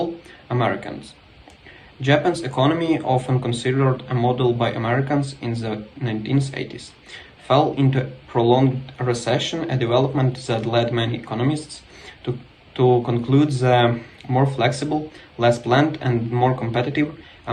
Americans. Japan's economy, often considered a model by Americans in the 1980s, fell into prolonged recession, a development that led many economists to conclude the more flexible, less planned, and more competitive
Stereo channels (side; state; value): both; identical; correlation 1.00